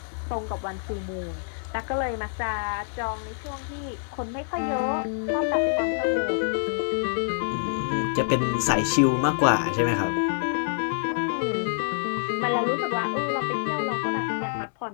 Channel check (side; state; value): right; silent; digital silence